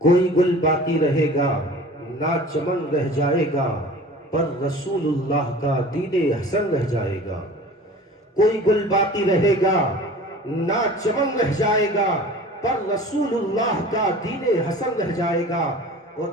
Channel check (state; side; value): normal; both; correlation 0.42